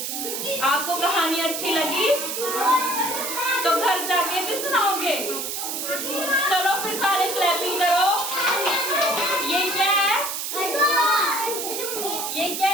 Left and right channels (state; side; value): noise; right; hiss, 4 dB below the sound